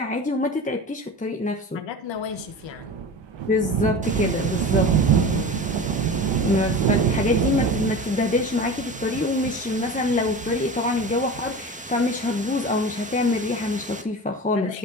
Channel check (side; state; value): both; normal; correlation 0.32